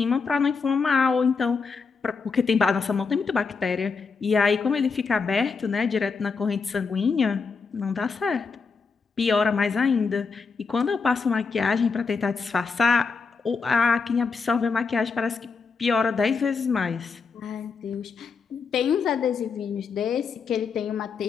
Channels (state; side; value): quieter; right; 5.0 dB